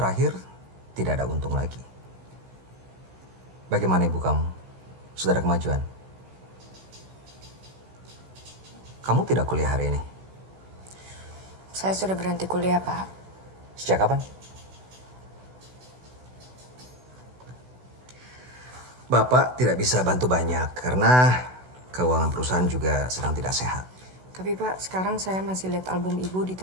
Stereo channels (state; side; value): late; left; 16 ms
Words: tidak ada untung lagi. Bagaimana ibu kamu? Sudah ada kemajuan? Kamu tidak kuliah hari ini? Saya sudah berhenti kuliah, Pak. Sejak kapan? Bapak tidak bisa bantu banyak karena keuangan perusahaan juga sedang tidak sehat. Tapi Pak, sekarang saya masih lihat album Ibu di